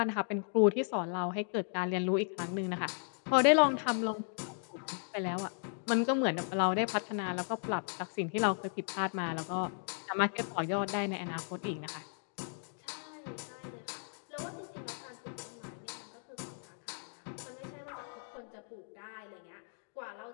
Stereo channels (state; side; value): silent; right; 54 dB below the other